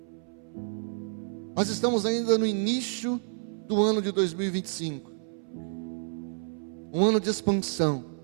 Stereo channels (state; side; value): silent; left; 58 dB below the other